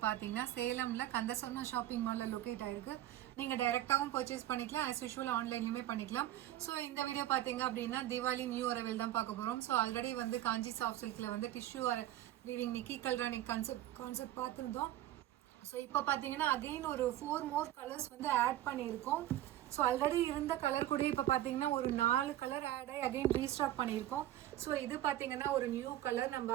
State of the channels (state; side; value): quieter; left; 13.6 dB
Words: பார்த்தீங்கன்னா சேலமில் கந்தசோனா ஷாப்பிங் மாலில் லொக்கேட் ஆயிருக்கு. நீங்கள் டைரெக்டாகவும் பர்ச்சேஸ் பண்ணிக்கலாம், ஆஸ் யூஷுவல் ஆன்லைன்லையுமே பண்ணிக்கலாம். ஸோ இந்த வீடியோ பார்த்தீங்க அப்படின்னா தீபாவளி நியூ அரைவல் தான் பார்க்க போகிறோம். ஸோ ஆல்ரெடி வந்து காஞ்சி சாஃப்ட் சில்கில் வந்து டிஷ்யூ வீவிங் நிக்கி கல்ரானி கான்செப்ட் பார்த்துருந்தோம். ஸோ இப்போ பார்த்தீங்கன்னா அகெயின் ஒரு 4 மோர் கலர்ஸ் வந்து ஆட் பண்ணியிருக்கோம். ஸோ ஆல்ரெடி இருந்த கலர் கூட இப்போ பார்த்தீங்கன்னா ஒரு 4 கலர் ஆட் ஆகி அகெயின் ரீஸ்டாக் பண்ணியிருக்கோம். ஸோ இது பார்த்தீங்கன்னா ஒரு நியூ கலர். நம்ம